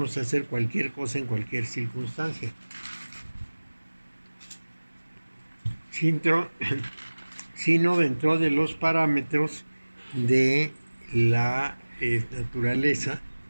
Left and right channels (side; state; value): both; inverted; correlation -1.00